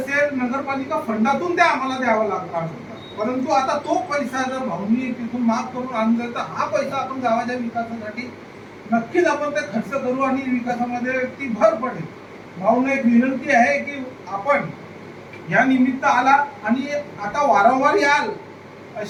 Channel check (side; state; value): both; identical; correlation 1.00